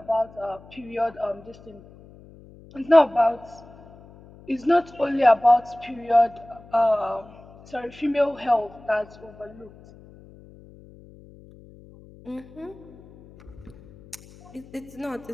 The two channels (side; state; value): left; noise; hum, 22 dB below the sound